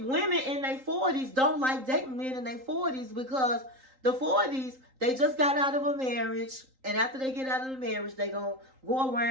in their 40s don't like dating men in their 40s because the 40s, they just got out of a marriage. And after they get out of the marriage, they going to go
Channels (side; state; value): left; late; 3.8 ms